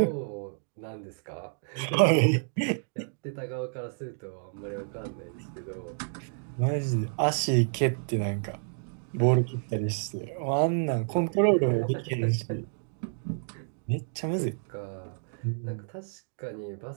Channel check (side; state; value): left; silent; digital silence